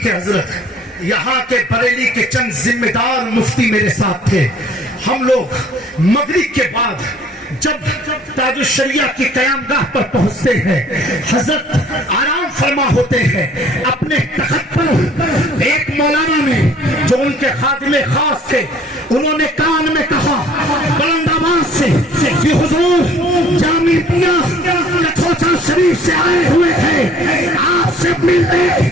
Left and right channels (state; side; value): normal; both; correlation 0.55